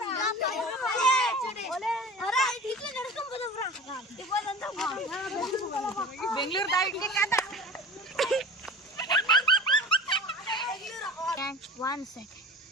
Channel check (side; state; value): both; normal; correlation 0.37